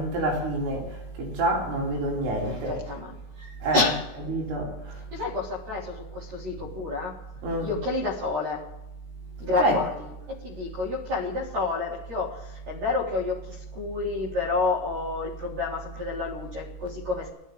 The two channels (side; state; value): left; late; 16 ms